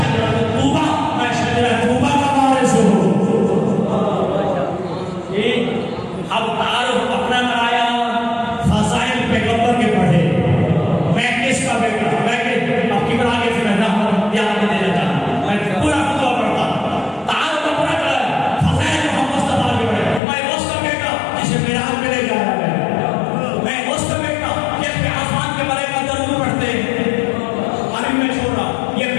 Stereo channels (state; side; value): drops out; right; at 20.2 s